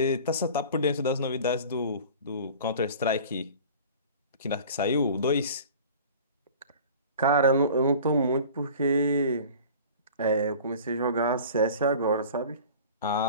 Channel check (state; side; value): inverted; both; correlation -0.42